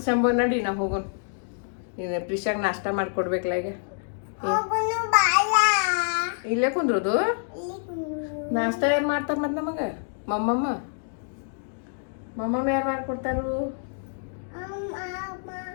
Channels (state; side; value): silent; right; digital silence